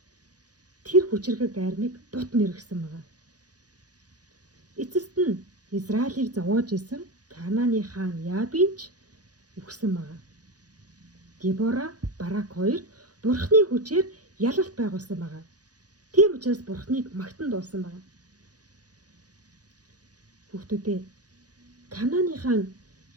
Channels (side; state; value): left; late; 0.68 ms